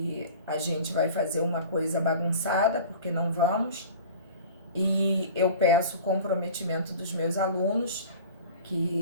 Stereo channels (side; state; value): both; inverted; correlation -0.39